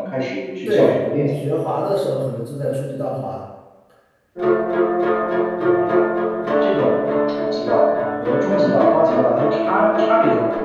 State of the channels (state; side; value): identical; both; correlation 1.00